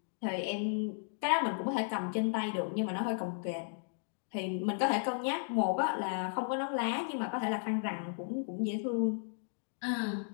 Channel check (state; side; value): silent; right; digital silence